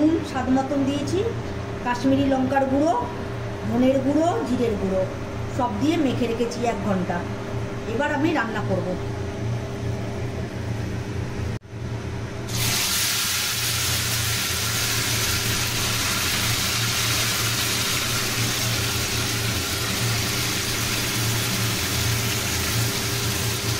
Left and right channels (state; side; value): identical; both; correlation 1.00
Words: স্বাদ মতন দিয়েছি, কাশ্মীরি লঙ্কার গুঁড়ো, ধনের গুঁড়ো, জিরের গুঁড়ো সব দিয়ে মেখে রেখেছি 1 ঘন্টা। এবার আমি রান্না করব।